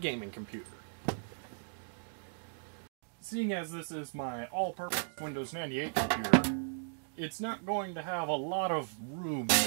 gaming computer. Seeing as this is my all-purpose Windows 98 computer, it's not going to have a lot of room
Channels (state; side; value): silent; left; digital silence